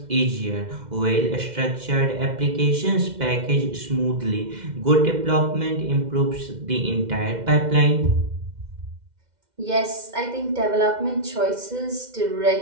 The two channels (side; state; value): left; late; 2.1 ms